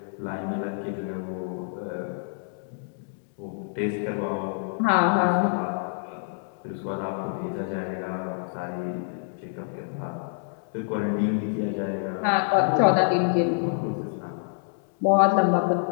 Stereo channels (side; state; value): right; silent; digital silence